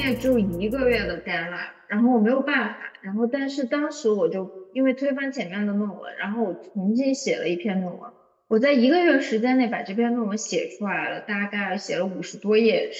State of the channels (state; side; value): identical; both; correlation 1.00